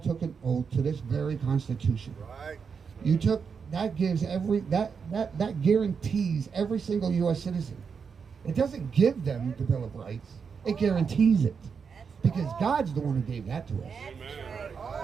an oath to this very Constitution. Right. You took, that gives that guarantees every single U.S. citizen. It doesn't give them the Bill of Rights, it guarantees it. Because God's the one who gave that to us. Amen.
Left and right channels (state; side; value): quieter; left; 6.0 dB